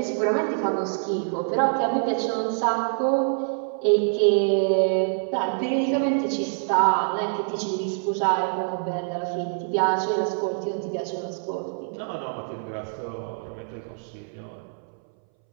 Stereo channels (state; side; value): silent; left; 61 dB below the other